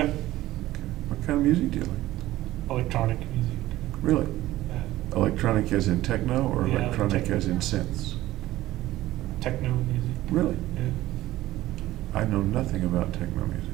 Okay. What kind of music do you like? electronic music. Really? Yeah. Electronic as in techno or Yeah, electronic techno. as in synths? Techno music. Really? Yeah. I know nothing about techno music.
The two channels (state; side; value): quieter; left; 15.9 dB